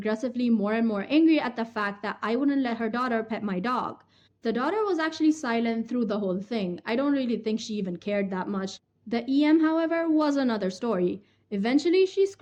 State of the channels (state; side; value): identical; both; correlation 1.00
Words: more and more angry at the fact that I wouldn't let her daughter pet my dog. The daughter was actually silent through the whole thing. I don't really think she even cared that much. The EM, however, was another story. Eventually, she